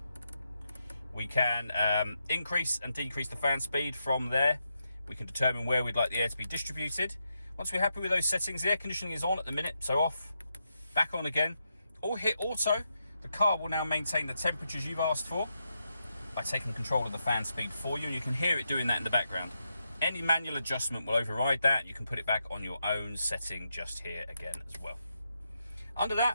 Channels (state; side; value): inverted; both; correlation -0.84